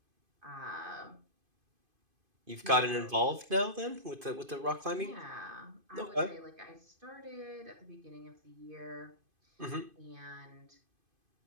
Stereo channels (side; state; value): left; late; 2.5 ms